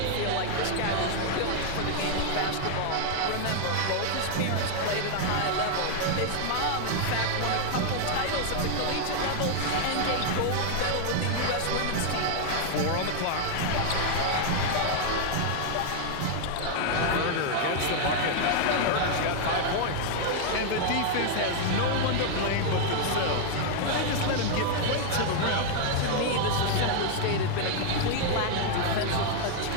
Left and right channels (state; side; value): different; both; correlation 0.00